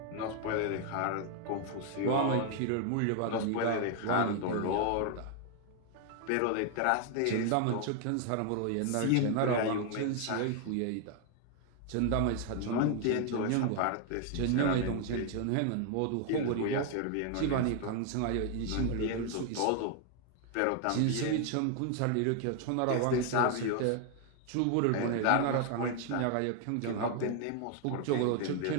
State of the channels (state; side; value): different; both; correlation 0.00